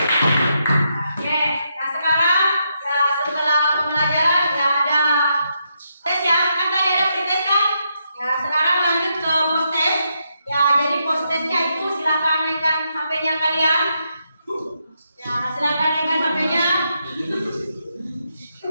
Oke, nah sekarang ya setelah pembelajaran ya ada tes ya, kan tadi ada pretest kan? Ya sekarang lanjut ke post test. Ya jadi post testnya itu silakan naikkan HP-nya kalian. Ya silakan naikkan HP-nya.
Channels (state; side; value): inverted; both; correlation -0.80